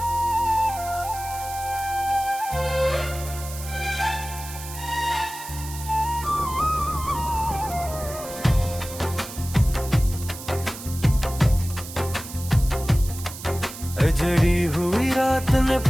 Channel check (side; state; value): right; noise; hiss, 12 dB below the sound